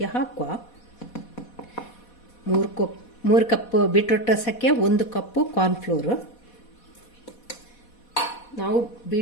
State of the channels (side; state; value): right; late; 4.1 ms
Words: ಹಾಕುವ. 3 ಕಪ್ ಬೀಟ್ರೋಟ್ ರಸಕ್ಕೆ 1 ಕಪ್ಪು ಕಾರ್ನ್ಫ್ಲೋರ್. ನಾವು